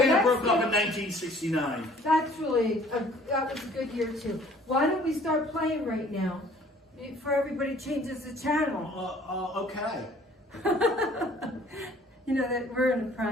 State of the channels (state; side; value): normal; both; correlation 0.55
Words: broke up in 1969. That was a good year too. Why don't we start playing right now? Before everybody changes the channel. Okay. You know that we're in